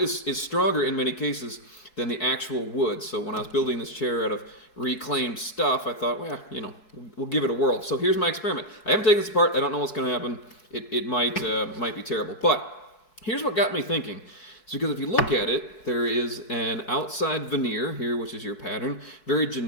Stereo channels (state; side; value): late; right; 4.7 ms